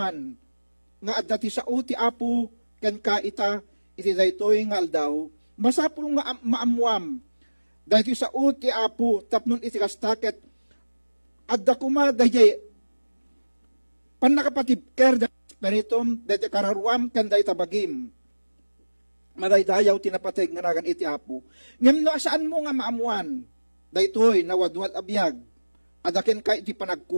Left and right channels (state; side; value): inverted; both; correlation -1.00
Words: nga adati sa ti Apo ken ka iti daytoy nga aldaw. Masapul nga maamuam, dahil sa uti Apo, tapnon iti kastaket, adda kuma dahil panakapatibker dahil spiritum, dahil kararwam, kan dahil tabagim. Madaydayaw tinapateg nga nagan iti Apo. Ngayon no, saan mo nga maamuan? Dahil ito'y nawadwad abiyag, adakin ka iti